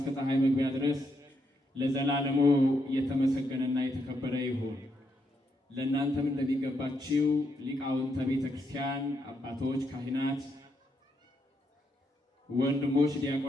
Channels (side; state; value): both; normal; correlation 0.79